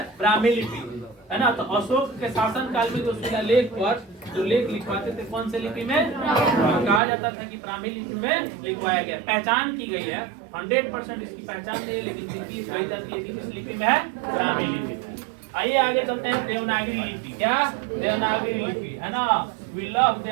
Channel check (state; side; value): drops out; left; at 7.0 s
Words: ब्राह्मी लिपि, है ना। तो अशोक के शासन काल में जो शिलालेख पर जो लेख लिखवाते थे, कौन से लिपि में? कहा जाता था कि ब्राह्मी लिपि में लिखवाया गया। पहचान की गई है, 100% इसकी पहचान नहीं है, लेकिन जिसकी कही जाती है कि किस लिपि में है? ब्राह्मी लिपि में। आइए आगे चलते हैं, देवनागरी लिपि। क्या? देवनागरी लिपि, है ना। We love